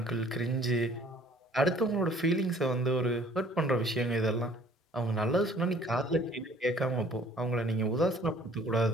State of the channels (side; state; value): both; normal; correlation 0.54